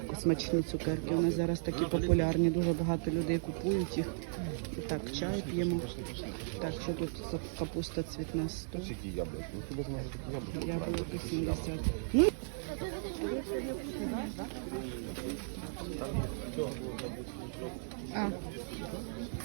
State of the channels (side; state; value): left; silent; 54 dB below the other